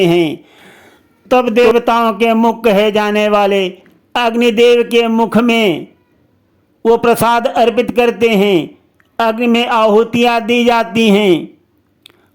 हैं, तब देवताओं के मुख कहे जाने वाले अग्निदेव के मुख में वो प्रसाद अर्पित करते हैं अग्नि में आहुतियाँ दी जाती हैं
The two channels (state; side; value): identical; both; correlation 1.00